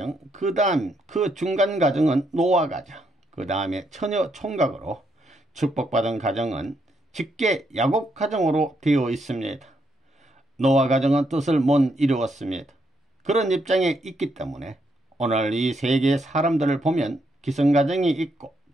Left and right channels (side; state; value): both; normal; correlation 0.77